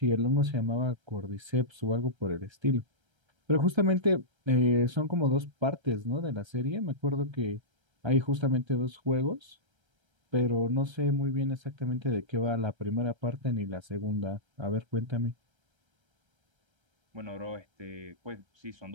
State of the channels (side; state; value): left; late; 1.3 ms